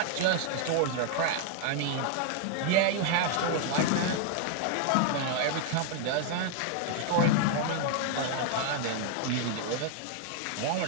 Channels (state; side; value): different; both; correlation 0.00